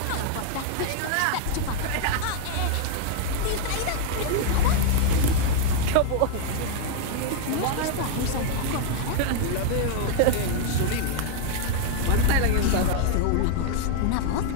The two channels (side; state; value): both; different; correlation 0.00